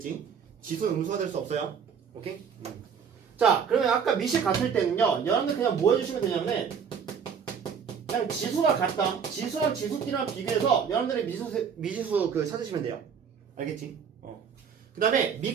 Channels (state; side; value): quieter; left; 6.9 dB